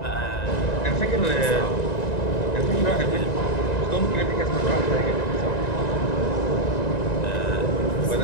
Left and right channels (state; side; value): late; right; 1.9 ms